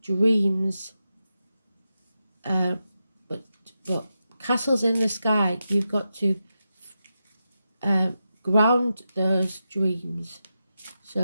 dreams, but castles in the sky. You've got to ground those dreams,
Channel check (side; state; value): both; inverted; correlation -0.89